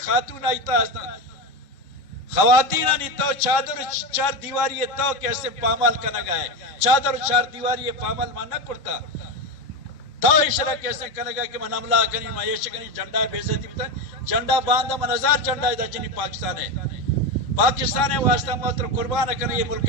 آئی تا ہستا خواتین آنی تو چادر 4 دیواری تو کیسے پامال کرنے گا ہے چادر 4 دیواری پامال مانا کرتا تو اشارہ کیسے کرنے گا کہ من عملہ کرنی معیش کرنی جھنڈا ہے بے عزتی بتا جھنڈا باندھا من 1000 جھنڈا ہے جنی پاکستان ہے واسطہ محتر قربان کرنے یہ ملک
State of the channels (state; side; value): late; right; 3.5 ms